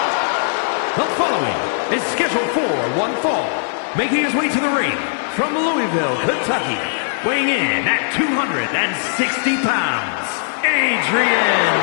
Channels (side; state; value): right; silent; digital silence